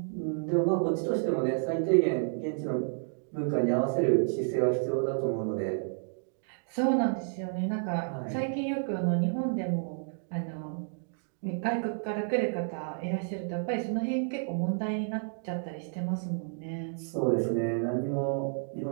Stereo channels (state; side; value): silent; left; digital silence